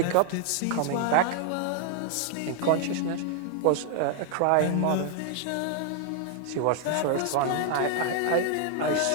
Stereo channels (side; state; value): both; different; correlation 0.00